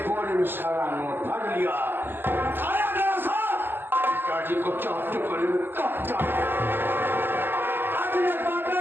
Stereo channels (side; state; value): left; late; 0.10 ms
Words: बोरे में सारा नोट भर लिया, उठाया गया साहब, पिताजी को चाप टुकड़े में काटा। आज